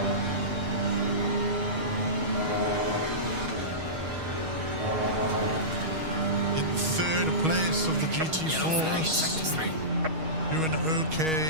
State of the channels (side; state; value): left; late; 6.3 ms